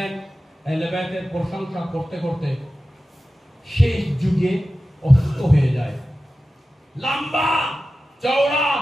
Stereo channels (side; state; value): both; normal; correlation 0.94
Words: আহলে বায়তের প্রশংসা করতে করতে শেষ যুগে অসুস্থ হয়ে যায়। লম্বা চওড়া